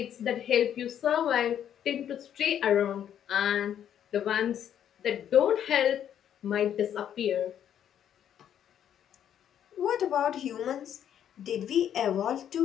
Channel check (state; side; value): quieter; right; 9.7 dB